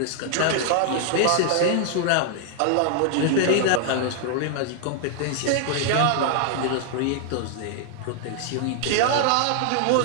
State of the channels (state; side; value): different; both; correlation 0.00